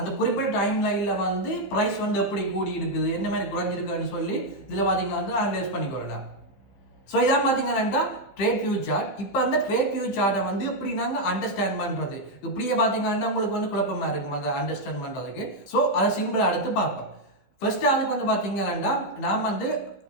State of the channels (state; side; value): late; right; 15 ms